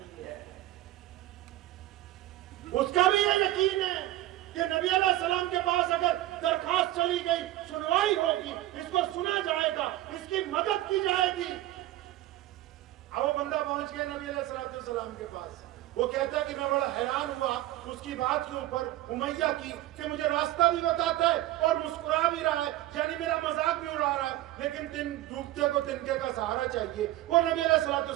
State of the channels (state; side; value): quieter; left; 15.4 dB